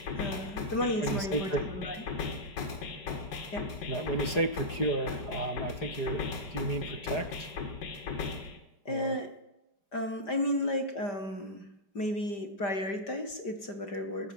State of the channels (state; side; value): late; right; 4.8 ms